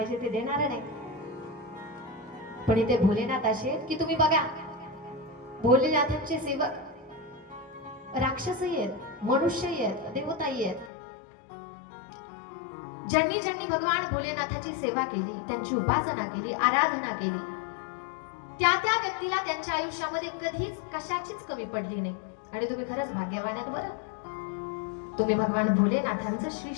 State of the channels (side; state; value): right; drops out; at 10.9 s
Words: ते देणार नाही. पण इथे भोलेनाथ असे की तुम्ही बघा, भोलेनाथांचे सेवक राक्षसही आहेत, मनुष्यही आहेत, देवताही आहेत. ज्यांनी ज्यांनी भगवान भोलेनाथाची सेवा केली, त्यांची उपासना केली, आराधना केली, त्या त्या व्यक्तीला त्यांच्या आयुष्यामध्ये कधीच कशाचीच कमी पडली नाही. आणि तुम्ही खरंच भाग्यवान आहेत बरं. तुम्ही भगवान भोलेनाथांचं श्री